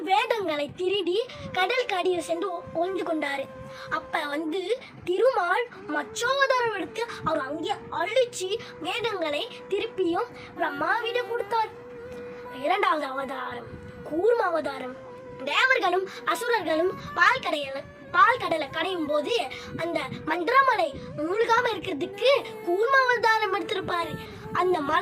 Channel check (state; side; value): identical; both; correlation 1.00